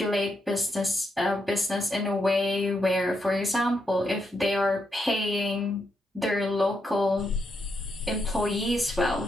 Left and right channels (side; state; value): both; normal; correlation 0.81